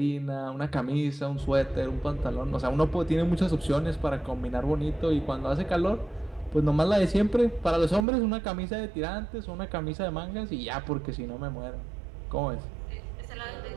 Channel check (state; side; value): drops out; left; at 8.1 s